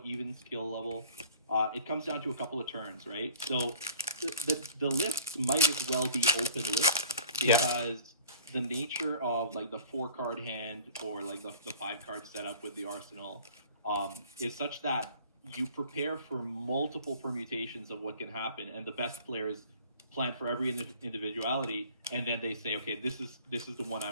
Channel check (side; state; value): both; inverted; correlation -0.46